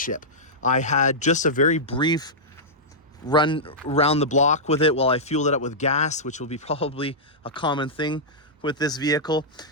I had just a very brief run around the block with it while I fueled it up with gas, which will be probably a common thing with this vehicle.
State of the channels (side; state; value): both; normal; correlation -0.11